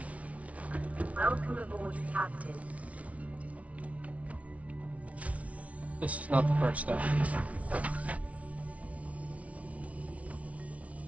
Welcome aboard, Captain. This is not the first step.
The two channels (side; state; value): left; late; 0.066 ms